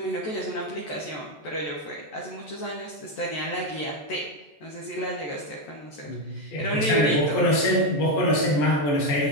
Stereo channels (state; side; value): late; right; 14 ms